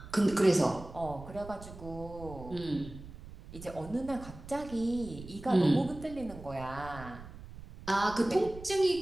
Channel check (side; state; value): right; noise; rumble, 15 dB below the sound